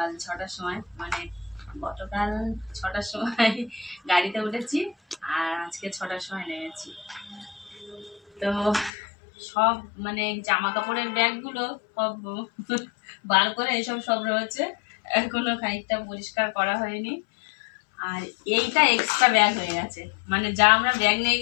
6টার সময়, মানে গতকাল 6টার সময় গাড়িতে উঠেছি আর আজকে 6টার সময় নেমেছি। তো সব মানে জামা কাপড়ের ব্যাগগুলো সব বার করে এসব সব রয়েছে, এখনো খানিকটা পরিষ্কার করা হয়নি। আর এইটা এক্সট্রা ব্যাগ হয়ে গেছে, মানে যা আমরা ব্যাগ নিয়ে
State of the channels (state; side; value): drops out; right; at 8.9 s